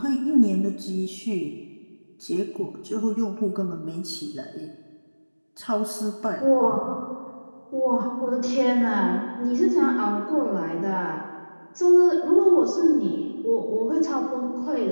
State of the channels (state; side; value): inverted; both; correlation -1.00